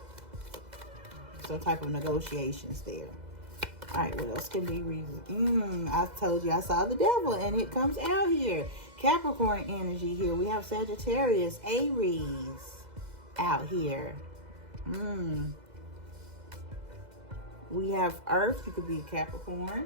some type of negotiations there. All right, what else can be reason? I told you I saw the devil, and it comes out here. Capricorn energy here. We have Sagittarius, Aries out here. We have Earth. You could be a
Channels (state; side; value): late; left; 2.0 ms